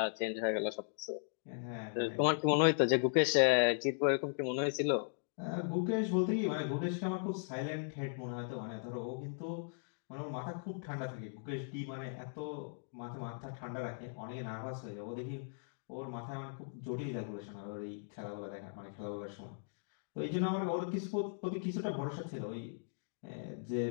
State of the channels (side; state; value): right; silent; digital silence